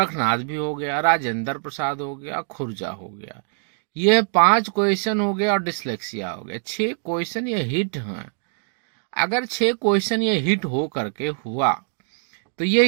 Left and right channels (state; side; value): silent; left; digital silence